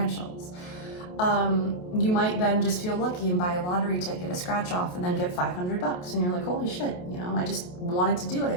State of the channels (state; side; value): late; right; 28 ms